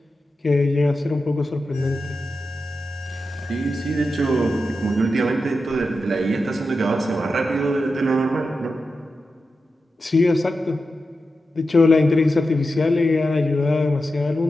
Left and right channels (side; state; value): both; normal; correlation 0.90